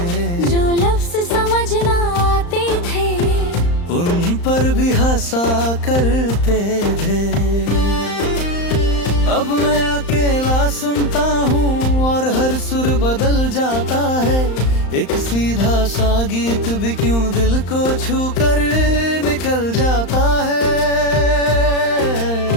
जो लफ्ज समझ ना आते थे उन पर भी हंसा करते थे। अब मैं अकेला सुनता हूँ और हर सुर बदल जाता है, एक सीधा सा गीत भी क्यों दिल को छू कर निकल जाता है।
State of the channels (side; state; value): right; late; 35 ms